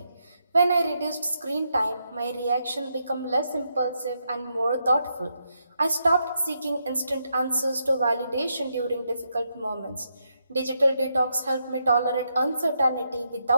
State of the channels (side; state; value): both; inverted; correlation -0.81